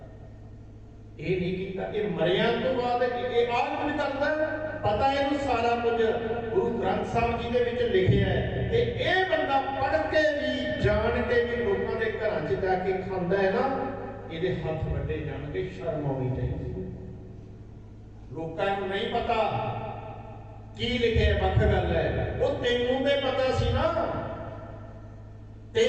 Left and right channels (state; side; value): identical; both; correlation 1.00